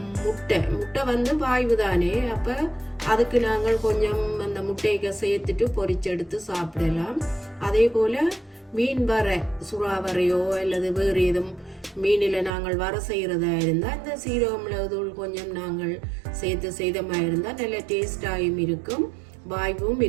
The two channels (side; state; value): left; drops out; at 12.5 s